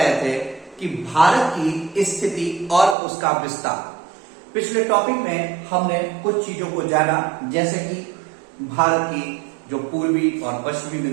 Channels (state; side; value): drops out; left; at 3.0 s